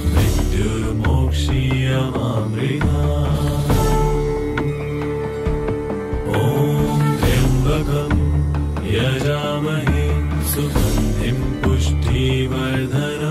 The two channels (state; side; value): identical; both; correlation 1.00